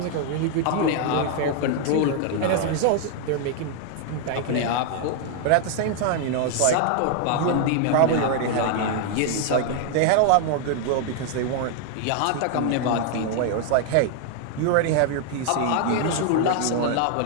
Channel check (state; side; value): different; both; correlation 0.00